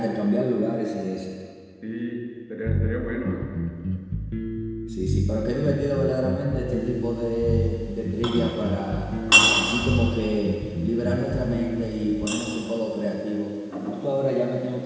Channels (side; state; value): both; identical; correlation 1.00